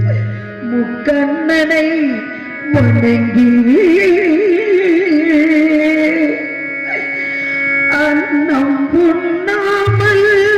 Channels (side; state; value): both; identical; correlation 1.00